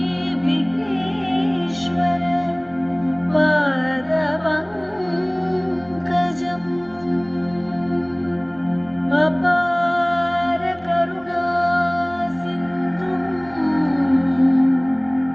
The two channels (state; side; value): noise; right; rumble, 30 dB below the sound